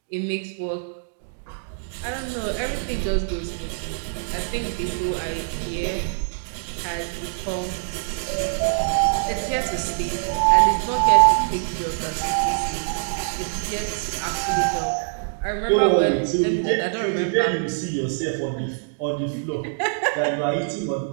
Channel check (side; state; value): left; silent; digital silence